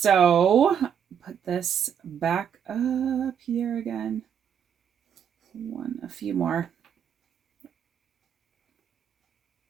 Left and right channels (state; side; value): quieter; left; 8.1 dB